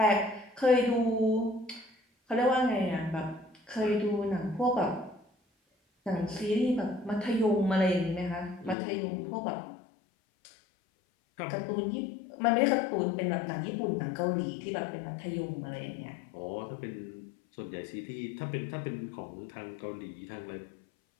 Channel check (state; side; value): drops out; right; at 8.8 s